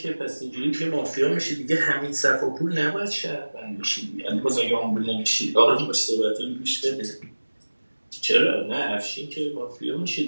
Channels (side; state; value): both; inverted; correlation -1.00